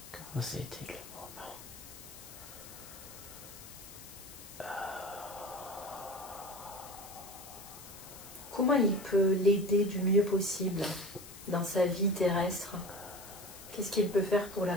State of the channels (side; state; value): left; noise; hiss, 16 dB below the sound